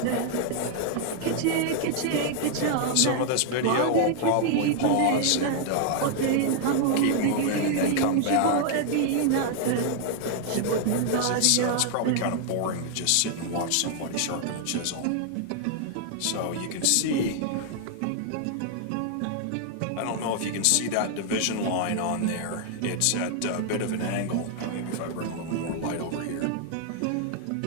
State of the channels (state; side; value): different; both; correlation 0.00